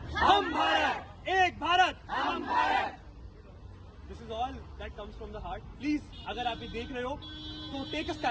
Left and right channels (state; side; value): identical; both; correlation 1.00